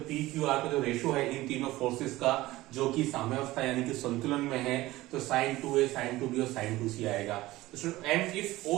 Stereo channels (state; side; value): quieter; left; 17.8 dB